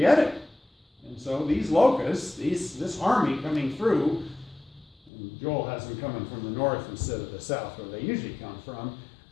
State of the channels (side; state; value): right; drops out; at 5.1 s